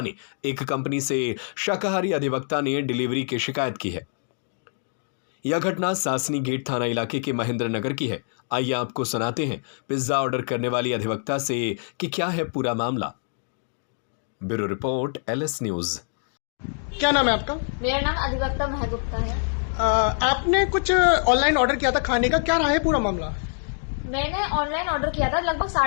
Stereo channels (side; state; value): right; silent; digital silence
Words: ने एक कंपनी से शाकाहारी अधिवक्ता ने डिलीवरी की शिकायत की है। यह घटना सासनी गेट थाना इलाके के महेंद्रनगर की है। आइए आपको सुनाते हैं पिज्जा ऑर्डर करने वाली अधिवक्ता से कि क्या है पूरा मामला। Bureau report LS news. क्या नाम है आपका? मेरा नाम अधिवक्ता मेहा गुप्ता है। आपने कुछ ऑनलाइन ऑर्डर किया था खाने का, क्या रहा है पूरा मामला? मैंने ऑनलाइन ऑर्डर किया था लगभग